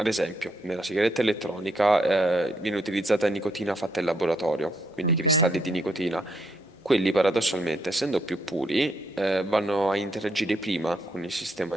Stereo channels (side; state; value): both; normal; correlation 0.75